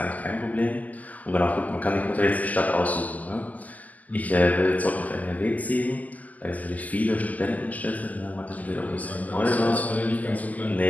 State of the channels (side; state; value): right; late; 0.074 ms